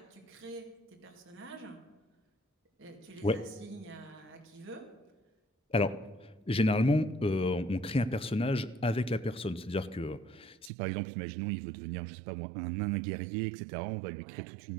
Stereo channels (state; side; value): drops out; left; at 10.7 s